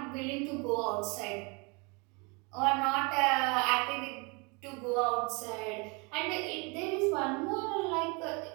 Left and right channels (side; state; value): left; quieter; 30.6 dB